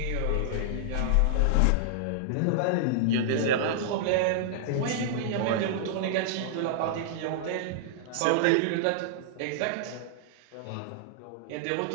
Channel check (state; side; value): different; both; correlation -0.01